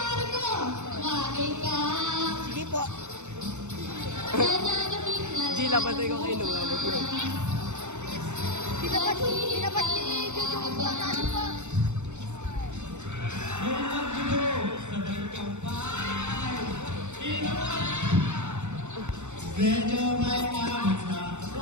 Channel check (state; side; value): late; left; 0.83 ms